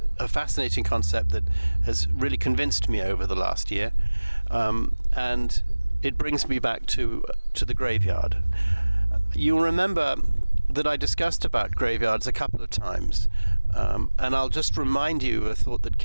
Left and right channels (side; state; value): both; inverted; correlation -1.00